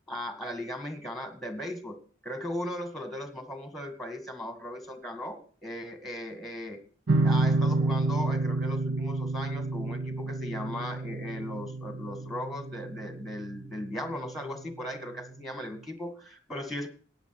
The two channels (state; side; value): normal; both; correlation 0.70